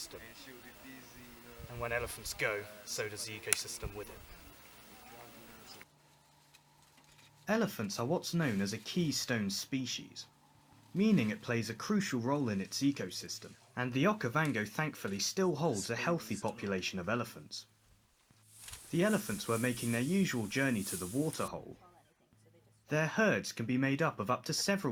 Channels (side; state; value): both; identical; correlation 1.00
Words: And when elephants go, so does the ecosystem with it. Elephants are what's known as a keystone species, meaning it plays a crucial role in its ecosystem, and the Okavango thankfully still holds a healthy population of elephants. The elephants were making their usual journey to the waterhole. Their herds can be made up of to